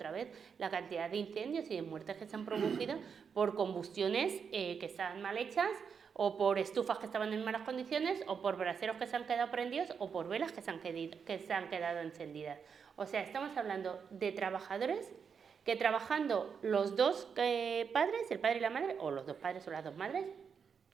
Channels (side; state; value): left; quieter; 6.5 dB